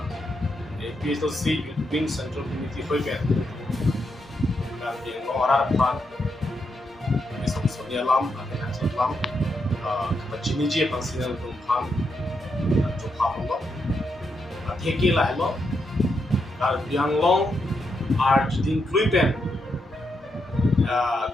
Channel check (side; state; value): both; normal; correlation 0.82